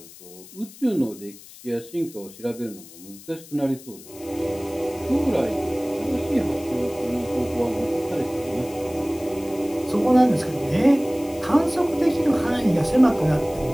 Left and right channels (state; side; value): noise; left; hiss, 19 dB below the sound